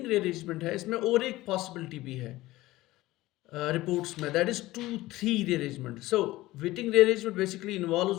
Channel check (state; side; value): quieter; right; 17.8 dB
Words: रीअरेंजमेंट है इसमें और एक पॉसिबिलिटी भी है रिपोर्ट्स में, that is 2 3 rearrangement. So Wittig rearrangement basically involves